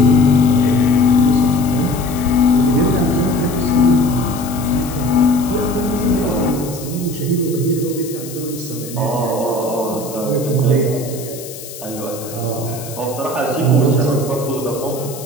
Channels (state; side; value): noise; left; hiss, 14 dB below the sound